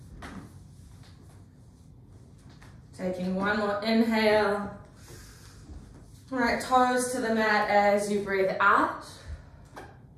Taking one more inhale. Right toes to the mat as you breathe out.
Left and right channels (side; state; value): both; identical; correlation 1.00